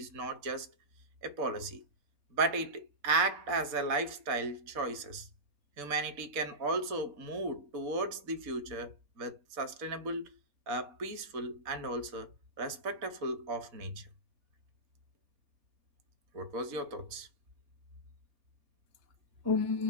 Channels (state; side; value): late; left; 4.1 ms